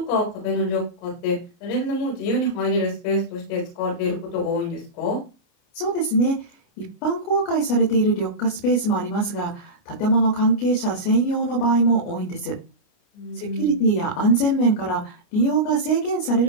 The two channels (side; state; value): right; late; 29 ms